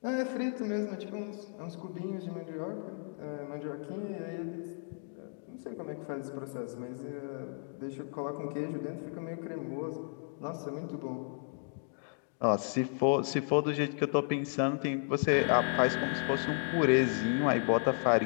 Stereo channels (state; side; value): silent; right; 55 dB below the other